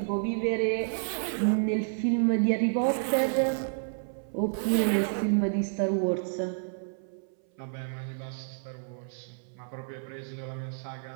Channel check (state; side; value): silent; left; 58 dB below the other